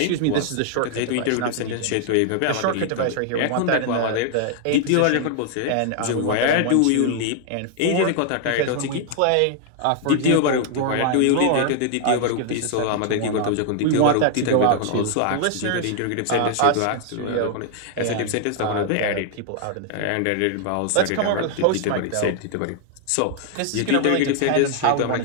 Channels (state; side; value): different; both; correlation 0.00